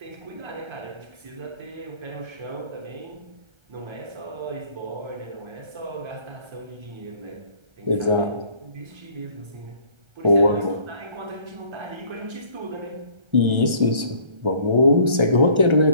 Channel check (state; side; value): late; left; 1.3 ms